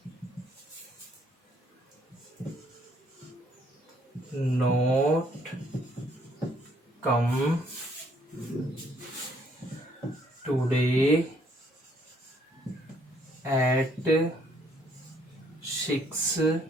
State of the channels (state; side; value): normal; both; correlation 0.66